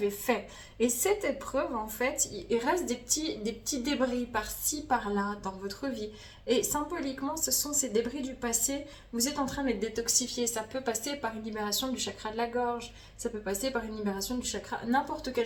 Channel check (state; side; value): identical; both; correlation 1.00